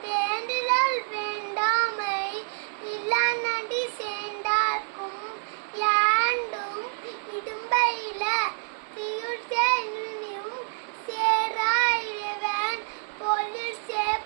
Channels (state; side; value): silent; left; 59 dB below the other